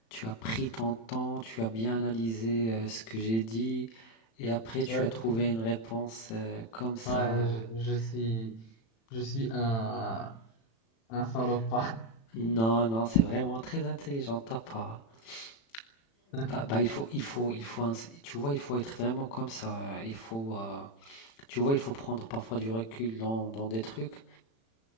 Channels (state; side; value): late; right; 35 ms